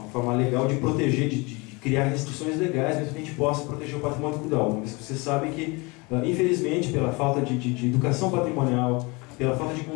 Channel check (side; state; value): right; quieter; 26.7 dB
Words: forma legal de proteger, de criar restrições legais, para que a gente possa proteger o patrimônio cultural. Mas você sabe que, infelizmente, pela falta de educação patrimonial, pela falta de